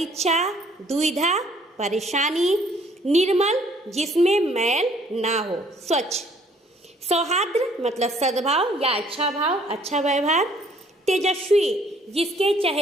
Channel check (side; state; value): both; normal; correlation 0.61